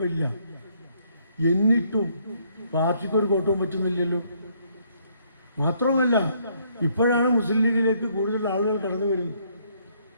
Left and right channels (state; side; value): inverted; both; correlation -0.69